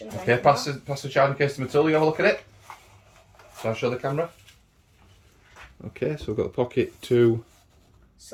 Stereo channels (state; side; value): identical; both; correlation 1.00